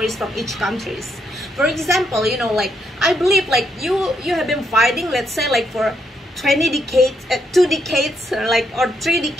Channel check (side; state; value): both; normal; correlation 0.77